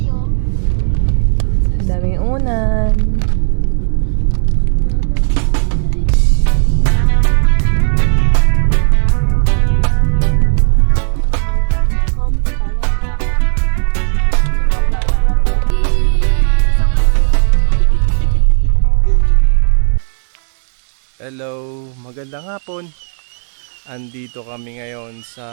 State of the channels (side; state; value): left; silent; digital silence